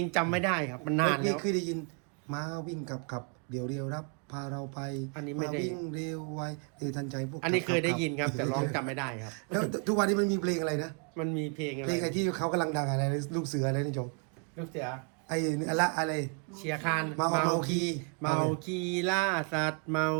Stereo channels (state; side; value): quieter; left; 39.9 dB